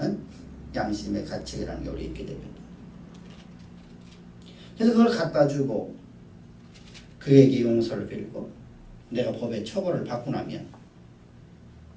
양심의 가책이라는 게 우리 있게 됩니다. 그래서 그걸 갖다 주고 그에게 용서를 빌고 내가 법의 처벌을 받고 나면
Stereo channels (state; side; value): identical; both; correlation 1.00